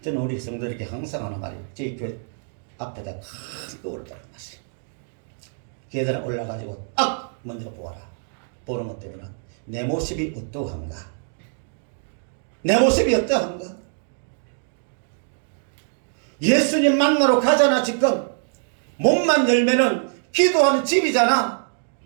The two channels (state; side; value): silent; left; 63 dB below the other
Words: 저는 우리 성도들에게 항상 하는 말이에요. 저희 교회 앞에다 큰 거울을 달아놨어요. 계단에 올라가지고 딱 먼저 보아라. 보는 것 때문에 내 모습이 어떠한가? 내 모습이 어떠한가? 예수님 만나러 가잖아. 지금 몸만 열면은 기도하는 집이잖아.